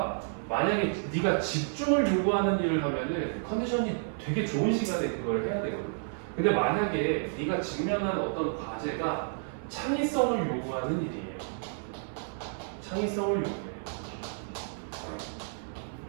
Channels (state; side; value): silent; left; 57 dB below the other